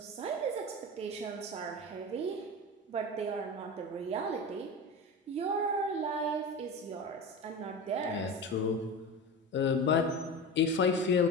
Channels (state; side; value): normal; both; correlation 0.27